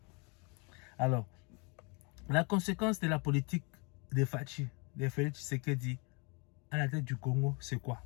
Alors, la conséquence de la politique de Fachi, de Félix Tshisekedi à la tête du Congo, c'est quoi?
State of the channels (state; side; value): quieter; right; 32.2 dB